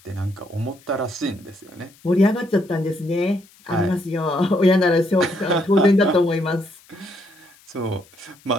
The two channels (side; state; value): left; noise; hiss, 28 dB below the sound